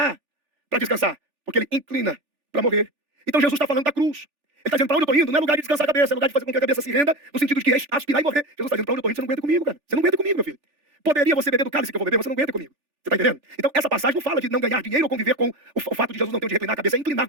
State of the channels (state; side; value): late; left; 3.4 ms